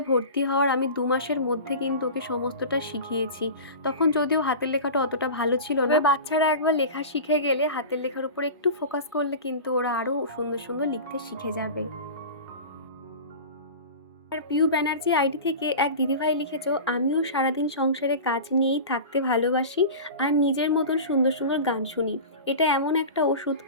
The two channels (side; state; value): both; inverted; correlation -0.32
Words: ভর্তি হওয়ার আমি 2 মাসের মধ্যে কিন্তু ওকে সমস্তটা শিখিয়েছি। তখন যদিও হাতের লেখাটা অতটা ভালো ছিল না, বাচ্চারা একবার লেখা শিখে গেলে হাতের লেখার উপর একটু ফোকাস করলে কিন্তু ওরা আরও সুন্দর সুন্দর লিখতে শিখে যাবে। আর পিউ ব্যানার্জি আইডি থেকে এক দিদিভাই লিখেছো আমিও সারাদিন সংসারে কাজ নিয়েই থাকতে ভালোবাসি আর নিজের মতন সুন্দর সুন্দর গান শুনি, এটা এমন একটা ওষুধ,